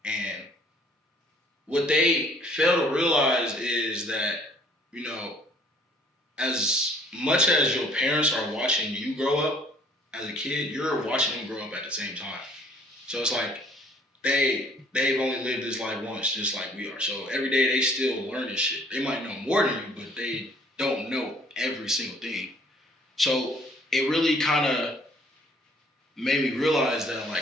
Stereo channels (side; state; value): both; normal; correlation 0.58